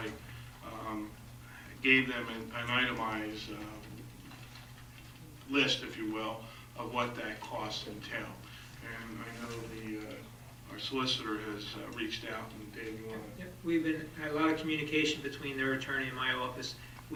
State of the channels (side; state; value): both; identical; correlation 1.00